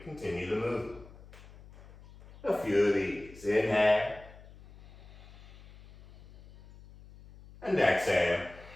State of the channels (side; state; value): left; noise; hum, 20 dB below the sound